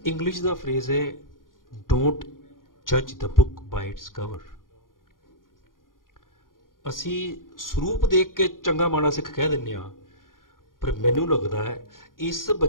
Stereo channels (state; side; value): late; right; 0.90 ms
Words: ਇੰਗਲਿਸ਼ ਦਾ ਫਰੇਜ਼ ਹੈ, ਡੋਂਟ ਜੱਜ the book by its cover. ਅਸੀਂ ਸਰੂਪ ਦੇਖ ਕੇ ਚੰਗਾ ਮਾੜਾ ਸਿੱਖ ਕਹਿ ਦਿੰਦੇ ਹਾਂ, ਪਰ ਮੈਨੂੰ ਲੱਗਦਾ ਹੈ ਇਸ